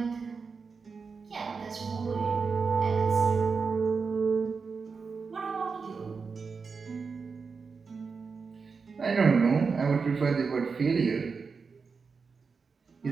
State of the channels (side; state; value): left; quieter; 5.1 dB